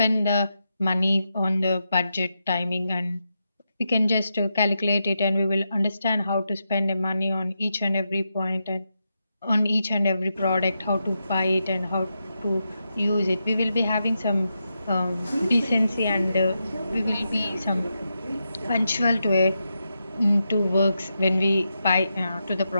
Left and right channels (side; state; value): both; inverted; correlation -0.86